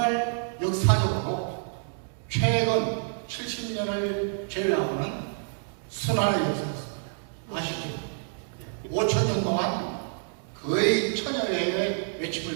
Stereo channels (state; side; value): silent; left; digital silence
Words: 역사적으로 최근 70년을 제외하고는 순환을 역사했습니다. 아시죠? 5천년 동안 거의 천여의